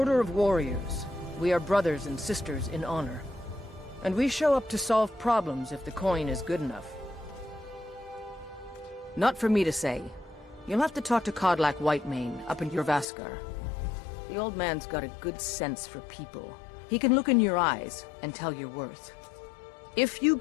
of warriors. We are brothers and sisters in honor. And we show up to solve problems if the coin is good enough. Not for me to say. You'll have to talk to Codlac Whitemane up in Jorvaskar. The old man's got a good sense for people. He can look in your eyes and tell your worth. If you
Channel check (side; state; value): right; drops out; at 13.1 s